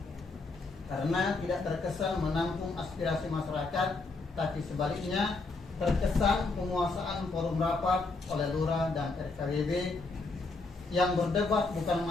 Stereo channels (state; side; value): quieter; right; 3.6 dB